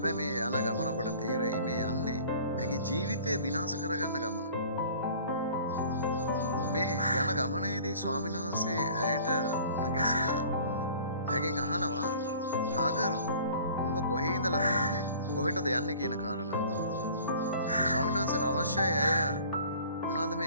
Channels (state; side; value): inverted; both; correlation -0.48